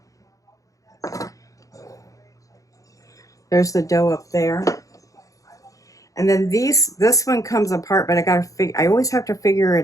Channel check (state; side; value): late; right; 0.16 ms